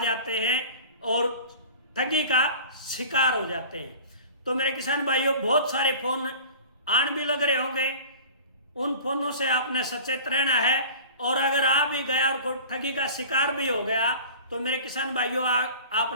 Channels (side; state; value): both; inverted; correlation -0.40